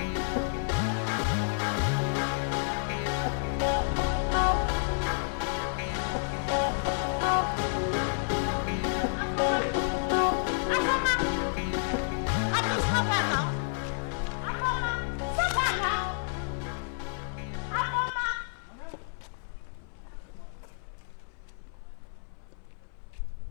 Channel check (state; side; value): silent; right; 58 dB below the other